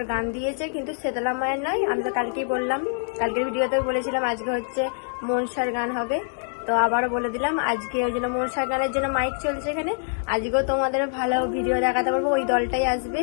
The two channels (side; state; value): right; silent; digital silence